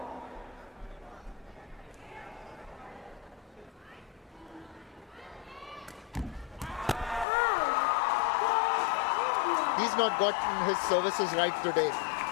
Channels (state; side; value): drops out; right; at 7.2 s